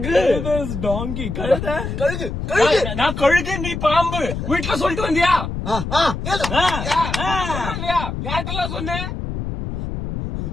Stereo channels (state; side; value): noise; left; rumble, 5 dB below the sound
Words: டாங்கி. கழுகு. நான் கழுகு. நீ பாம்பு. வீட்டுல சொல்லிட்டு வந்தியா? யார்கிட்டலாம் சொன்ன?